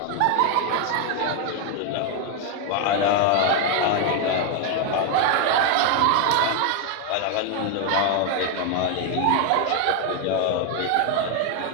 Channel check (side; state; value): both; different; correlation 0.01